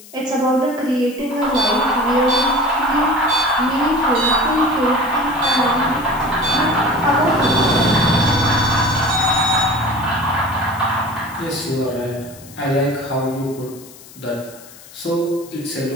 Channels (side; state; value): left; noise; hiss, 20 dB below the sound